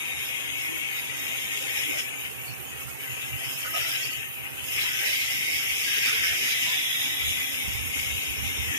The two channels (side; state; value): both; inverted; correlation -0.38